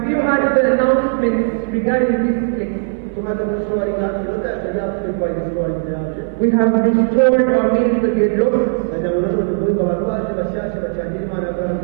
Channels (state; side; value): silent; left; 58 dB below the other